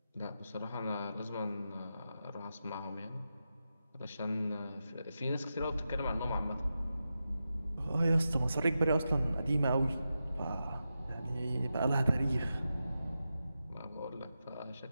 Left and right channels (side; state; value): both; inverted; correlation -0.90